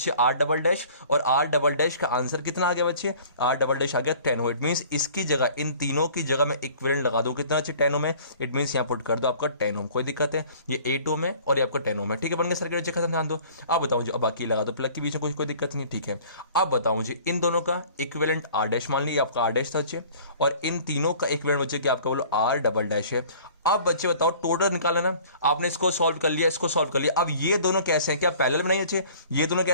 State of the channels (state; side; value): inverted; both; correlation -0.49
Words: R डबल डैश, और R डबल डैश का आंसर कितना आ गया बच्चे, R डबल डैश आ गया 10 ओम। इट मींस इसकी जगह, इन तीनों की जगह मैं इक्विवेलेंट लगा दूं कितना अच्छे 10 ओम है। इट मींस यहां पुट कर दो आपका 10 ओम। कोई दिक्कत है, ये 8 ओम है और ये आपका 10 ओम है। ठीक है, बन गया सर्किट अच्छे, खत्म। ध्यान दो, अब बताऊं जी, अब बाकी लगा दो प्लग के बीच में, कोई दिक्कत नहीं। ठीक है, अब बताऊं जी, इन दोनों का इक्विवेलेंट R डैश मान लिया आपका R डैश था अच्छे, और इन तीनों का इक्विवेलेंट बच्चे क्या आपका बोलो R डबल डैश है। अब बच्चे बताओ टोटल निकालना ना, आपने इसको सॉल्व कर लिया, इसको सॉल्व कर लिया। अब ये दोनों कैसे हैं, क्या पैरेलल में नहीं अच्छे, ये दोनों